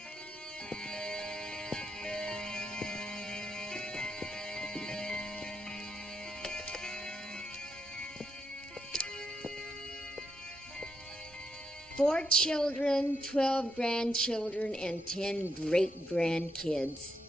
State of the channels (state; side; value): normal; both; correlation 0.81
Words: Four children, 12 grandchildren, and 10 great-grandkids.